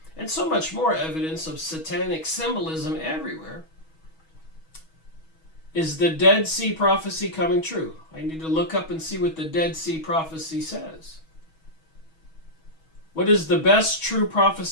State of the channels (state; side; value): late; right; 6.2 ms